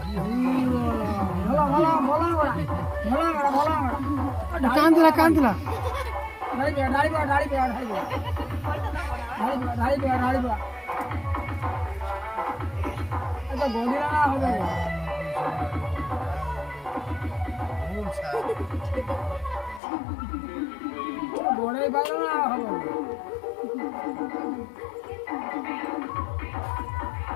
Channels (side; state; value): right; drops out; at 19.8 s